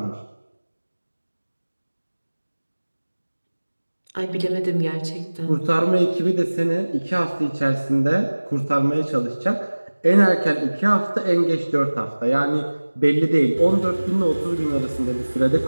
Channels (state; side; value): inverted; both; correlation -1.00